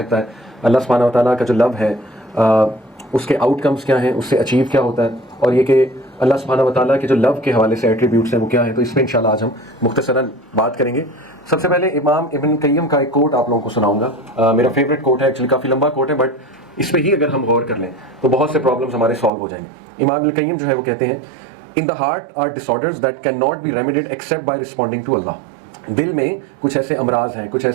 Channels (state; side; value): drops out; left; at 19.3 s